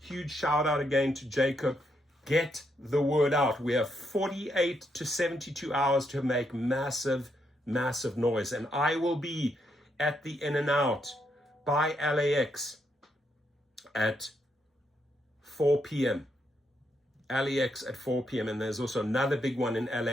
shout out again to Jacob. Get the word out. We have 48 to 72 hours to make massive noise. And I will be at the In-N-Out by LAX at 4 p.m. LAX at 4 p.m. And there's also another big one in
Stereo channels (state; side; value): normal; both; correlation 0.78